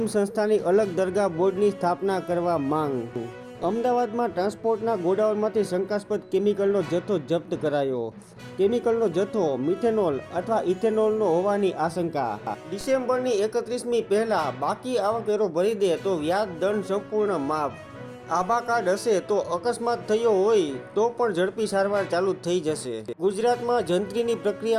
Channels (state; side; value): identical; both; correlation 1.00